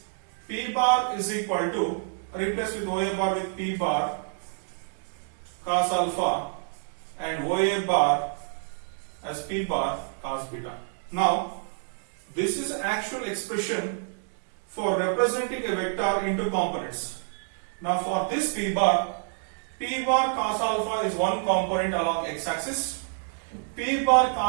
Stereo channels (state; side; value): silent; left; 60 dB below the other